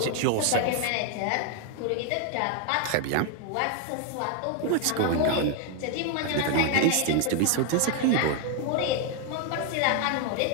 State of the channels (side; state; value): both; different; correlation 0.00